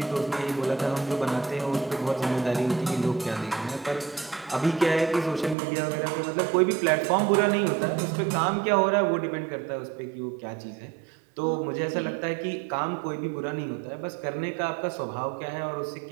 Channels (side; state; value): left; drops out; at 5.6 s